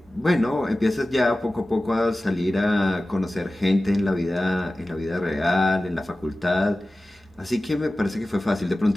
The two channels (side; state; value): both; normal; correlation 0.96